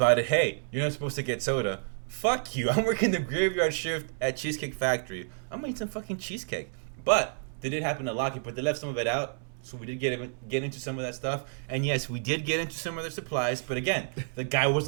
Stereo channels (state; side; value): silent; left; 58 dB below the other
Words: it. Hey, you're not supposed to get soda. Fuck you. I'm working the graveyard shift at Cheesecake Factory. I'm gonna eat some fucking cheesecake. But they did happen to lock it, but they left some of it out. So we did get into some of that stuff. And yes, we did get into some of their supplies. But again, the guy was